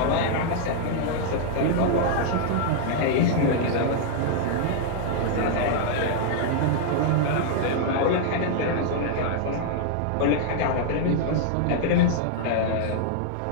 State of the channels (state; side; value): different; both; correlation -0.01